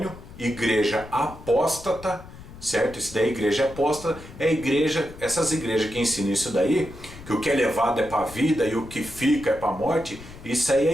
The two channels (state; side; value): noise; left; rumble, 16 dB below the sound